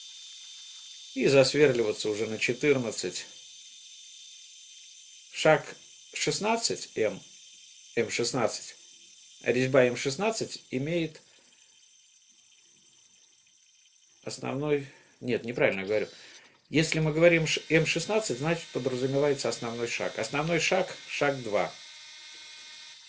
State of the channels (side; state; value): both; identical; correlation 1.00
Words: И засверливаться уже на 14. Шаг 16 М16. Резьба М16 имеет основной... Нет, неправильно говорю. Если мы говорим М16, значит подразумевается основной шаг. Основной шаг, шаг 2.